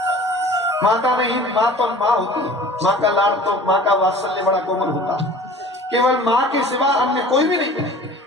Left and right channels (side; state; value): both; normal; correlation 0.44